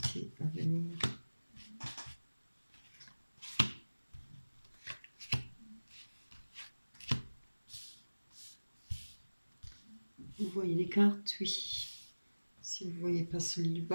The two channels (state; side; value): inverted; both; correlation -1.00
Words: à venir. Vous voyez les cartes? Oui. Si vous ne voyez pas celui du